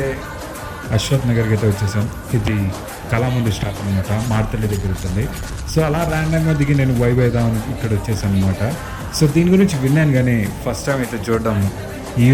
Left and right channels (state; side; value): identical; both; correlation 1.00